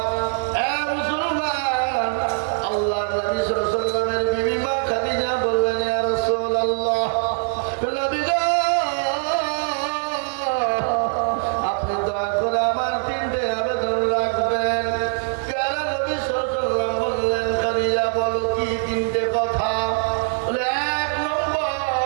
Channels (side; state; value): left; silent; 64 dB below the other